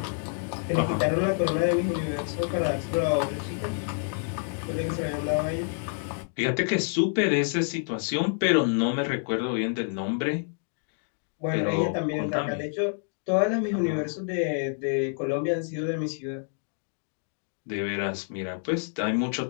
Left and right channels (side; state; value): right; silent; digital silence